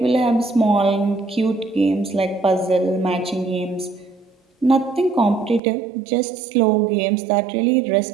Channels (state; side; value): drops out; left; at 5.6 s